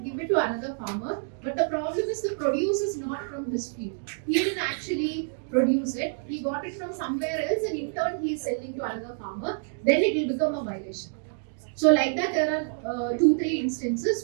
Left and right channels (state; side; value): silent; left; digital silence